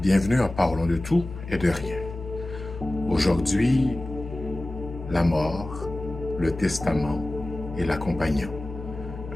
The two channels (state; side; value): noise; left; hum, 11 dB below the sound